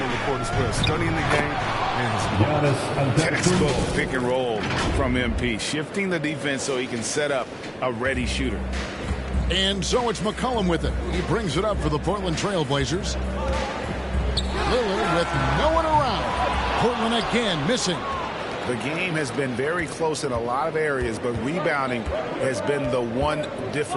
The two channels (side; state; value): both; identical; correlation 1.00